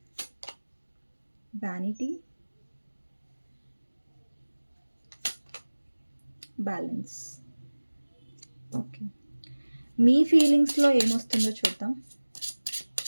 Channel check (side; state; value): both; inverted; correlation -1.00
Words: vanity, balance. Okay. మీ ఫీలింగ్స్లో ఏమొస్తుందో చూద్దాం.